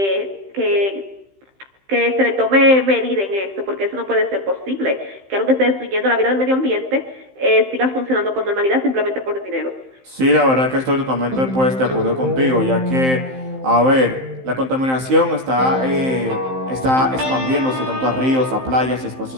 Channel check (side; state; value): left; late; 15 ms